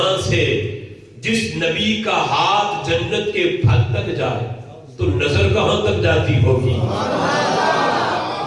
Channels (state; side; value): identical; both; correlation 1.00